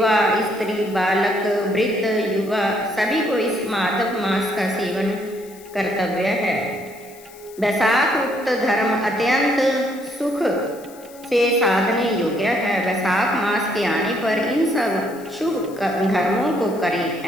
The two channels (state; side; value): noise; left; hiss, 22 dB below the sound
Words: स्त्री, बालक, वृद्ध, युवा सभी को इस माधव मास का सेवन कर्तव्य है। वैशाख उक्त धर्म अत्यंत सुख से साधने योग्य है। वैशाख मास के आने पर इन सब शुभ धर्मों को करें।